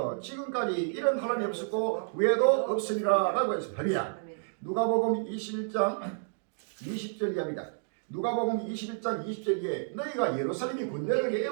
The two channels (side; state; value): left; silent; digital silence